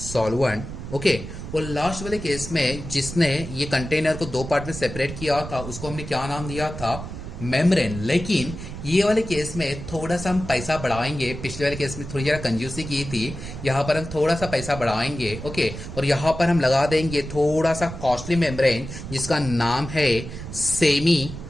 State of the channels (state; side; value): noise; right; rumble, 10 dB below the sound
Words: ओके, और लास्ट वाले केस में जिसने ये कंटेनर को दो पार्ट में सेपरेट किया था उसको हमने क्या नाम दिया था, मेम्ब्रेन। लेकिन ये वाले केस में थोड़ा सा हम पैसा बढ़ाएंगे, पिछले वाले केस में थोड़ी जरा कंजूसी की थी, यहाँ पर हम थोड़ा सा पैसा बढ़ाएंगे। ओके, और यहाँ पर हम लगा देंगे थोड़ा सा कॉस्टली मेम्ब्रेन जिसका नाम है semi